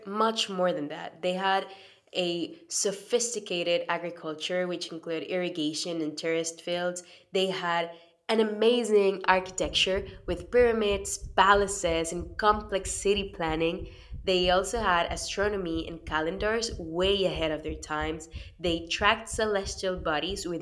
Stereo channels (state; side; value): identical; both; correlation 1.00